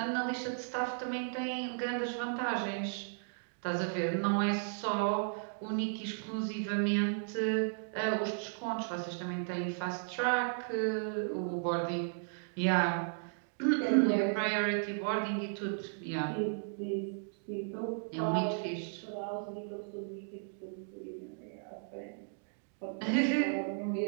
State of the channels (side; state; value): left; silent; digital silence